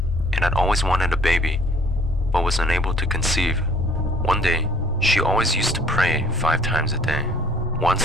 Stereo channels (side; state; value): both; normal; correlation 0.56